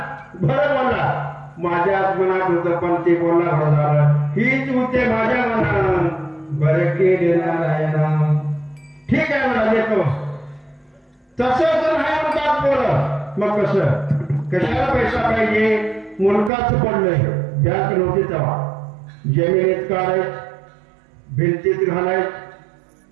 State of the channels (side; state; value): left; drops out; at 16.5 s